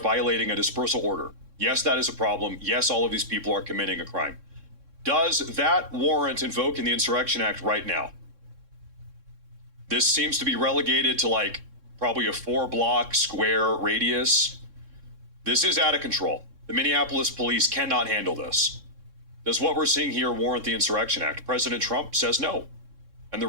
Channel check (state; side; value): late; left; 3.6 ms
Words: a dispersal order. Yes, that is a problem. Yes, all of these people are committing a crime. Does that warrant invoking the Insurrection Act right now? This seems to be relegated to like probably a 4-block square radius. This is out of control. The Minneapolis police cannot handle this. Does what we're seeing here warrant the Insurrection Act? President Trump says no. And the